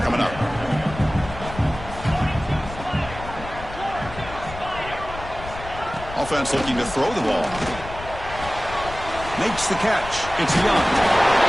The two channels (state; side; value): noise; left; rumble, 12 dB below the sound